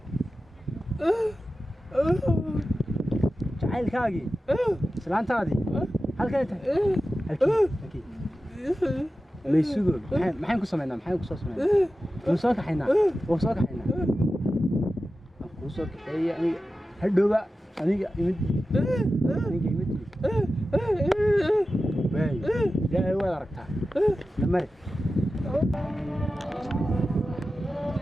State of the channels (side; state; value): both; normal; correlation 0.93